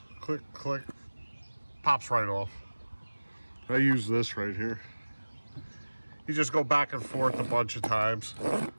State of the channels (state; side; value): inverted; both; correlation -1.00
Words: click, click, pops right off. I use this right here. You just go back and forth a bunch of times.